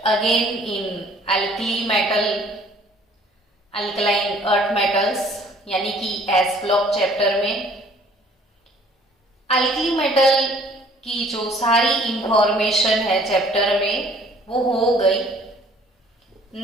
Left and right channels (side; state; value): both; normal; correlation 0.57